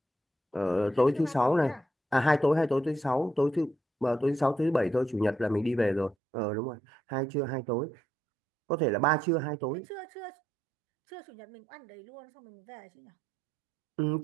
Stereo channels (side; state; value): left; drops out; at 6.2 s